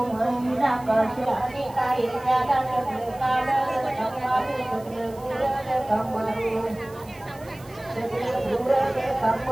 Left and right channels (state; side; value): noise; right; hiss, 24 dB below the sound